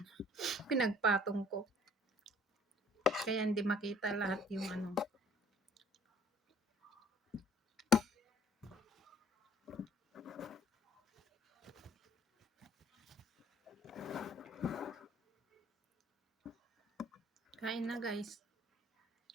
Pinagpatong ko. Kaya hindi makita lahat yung Kain na, guys.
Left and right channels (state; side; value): normal; both; correlation 0.57